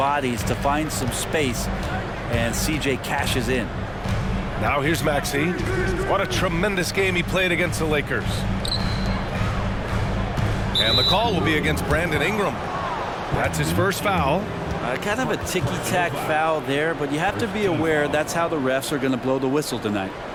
to find some space, and CJ cashes in. Now here's Maxey. What a tremendous game he played against the Lakers. And the call will be against Brandon Ingram. That's his first foul. Kind of a ticky-tack foul there, but you have to be aware that's how the refs are going to blow the whistle tonight.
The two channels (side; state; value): both; identical; correlation 1.00